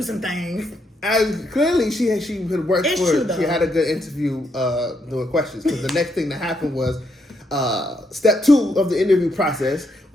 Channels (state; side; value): normal; both; correlation 0.77